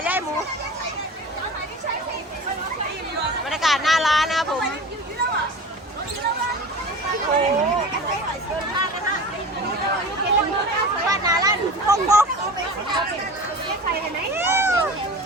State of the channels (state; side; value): normal; both; correlation 0.34